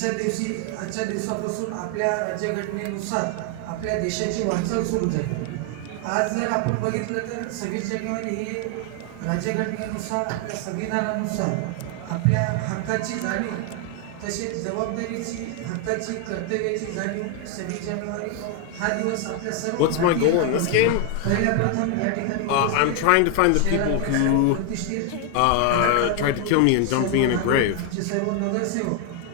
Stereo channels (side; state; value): both; different; correlation 0.00